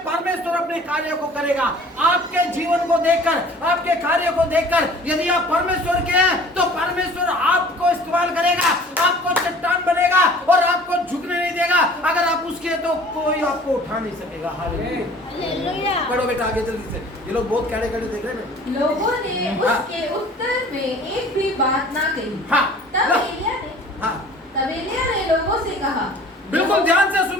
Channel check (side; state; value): both; normal; correlation 0.48